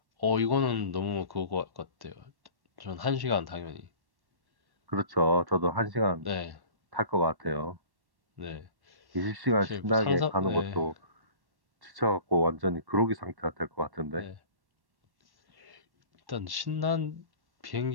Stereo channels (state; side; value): late; left; 1.1 ms